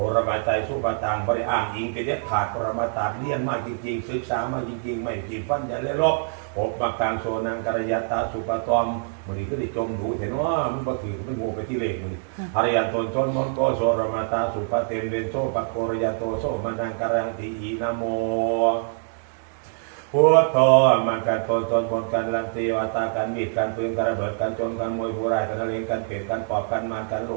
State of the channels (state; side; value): silent; left; 62 dB below the other